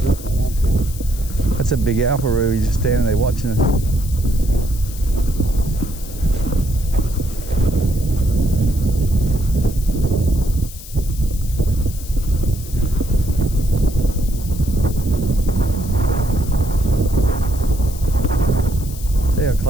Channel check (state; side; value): noise; left; hiss, 15 dB below the sound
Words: not that bad. That's a big alparoo. He's just standing there watching us.